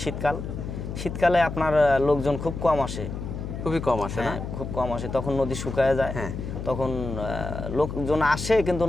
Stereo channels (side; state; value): left; noise; hum, 7 dB below the sound